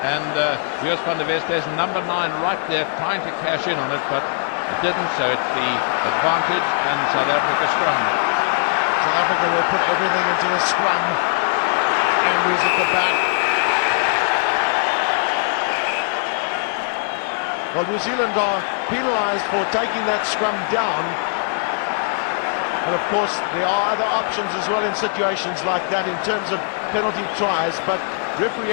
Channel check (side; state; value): right; silent; digital silence